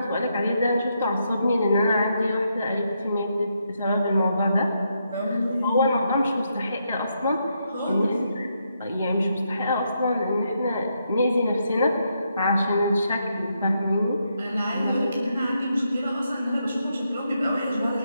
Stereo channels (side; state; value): both; inverted; correlation -0.80